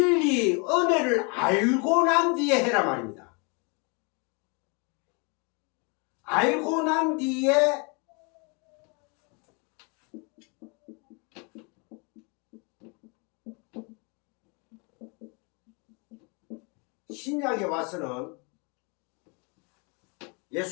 은혜를 알고 난 뒤에 해라 말입니다. 알고 난 뒤에 신약에 와서는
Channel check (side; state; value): right; quieter; 32.5 dB